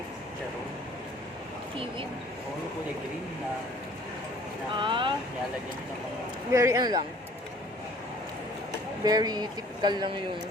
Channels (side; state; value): both; normal; correlation 0.54